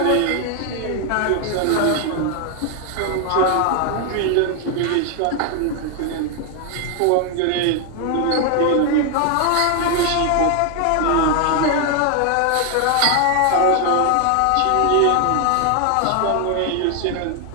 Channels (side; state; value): both; different; correlation 0.01